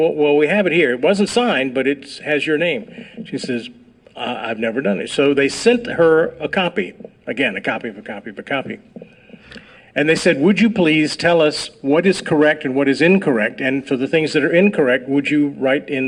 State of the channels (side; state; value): both; identical; correlation 1.00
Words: we have it here. It wasn't signed, but it has your name. She says, "I've never done it." So they sent her a copy. Again, a copy of a copy of a copy. And they said, "Would you please tell us what is correct and what is incorrect? And for the things that are incorrect, would you write